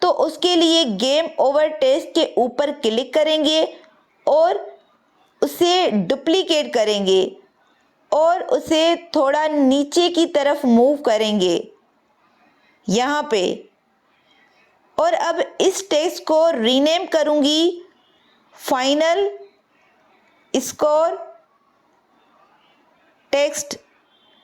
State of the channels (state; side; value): identical; both; correlation 1.00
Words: तो उसके लिए गेम ओवर टेक्स्ट के ऊपर क्लिक करेंगे और उसे डुप्लीकेट करेंगे और उसे थोड़ा नीचे की तरफ मूव करेंगे यहाँ पे। और अब इस टेक्स्ट को रीनेम करूँगी फाइनल स्कोर टेक्स्ट